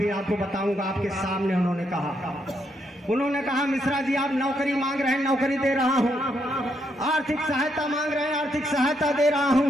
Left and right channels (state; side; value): normal; both; correlation 0.77